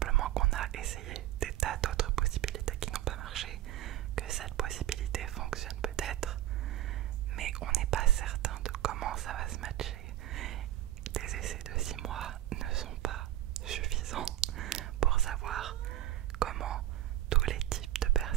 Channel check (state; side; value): quieter; left; 13.6 dB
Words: qu'on a essayé des tas d'autres possibilités qui n'ont pas marché, que cette possibilité fonctionne peut-être, mais on n'est pas certain de comment ça va se matcher. Des essais de 6 mois ne sont pas suffisants pour savoir comment tous les types de